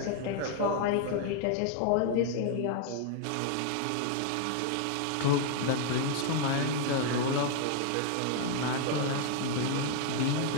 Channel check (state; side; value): different; both; correlation 0.00